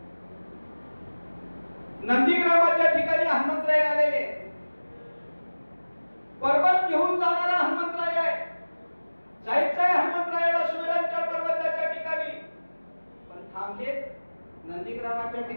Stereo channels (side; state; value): both; inverted; correlation -1.00